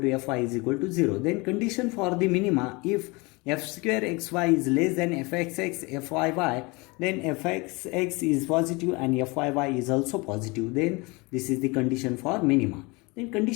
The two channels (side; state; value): right; quieter; 26.4 dB